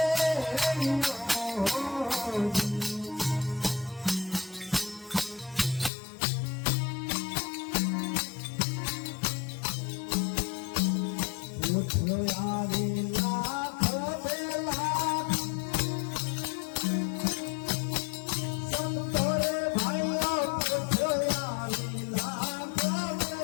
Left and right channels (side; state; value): right; drops out; at 5.9 s